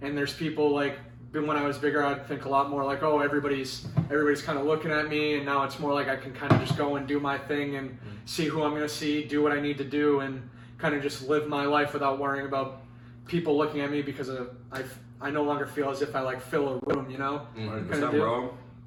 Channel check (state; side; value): identical; both; correlation 1.00